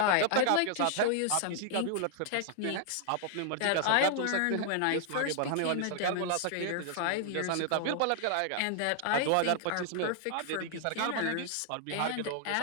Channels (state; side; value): different; both; correlation 0.00